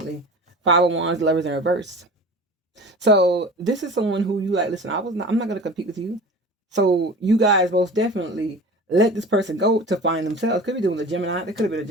Five of Wands, lovers in reverse. So this is someone who you like, listen, I'm not gonna compete with you. So you guys most definitely let this person go to find themselves. Could be doing a Gemini. They could have been a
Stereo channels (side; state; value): both; normal; correlation 0.37